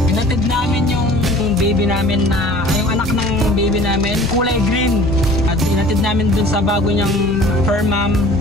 hinatid namin yung baby namin yung anak ng baby namin kulay green at hinatid namin dun sa bago niyang fur mom.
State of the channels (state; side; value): normal; both; correlation 0.47